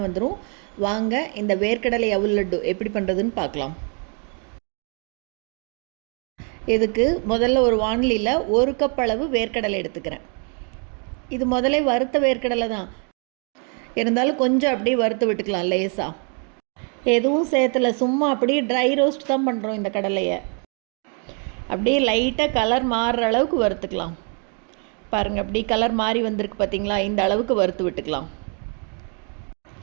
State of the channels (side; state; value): left; quieter; 39.3 dB